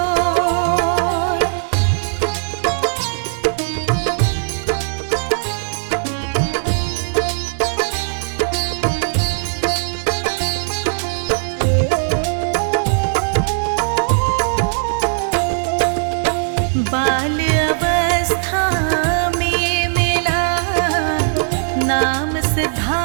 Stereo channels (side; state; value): left; silent; digital silence